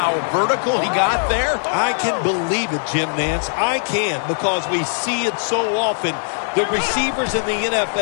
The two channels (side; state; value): right; silent; 62 dB below the other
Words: vertical he got there? I can believe it, Jim Nance. I can, because we see it so often. The receivers in the